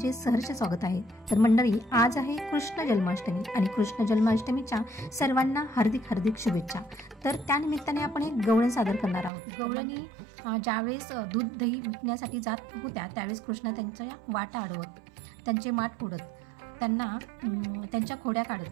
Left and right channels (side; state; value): left; drops out; at 9.3 s